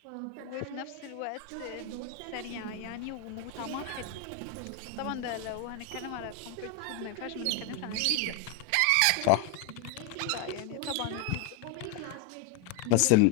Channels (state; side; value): different; both; correlation 0.01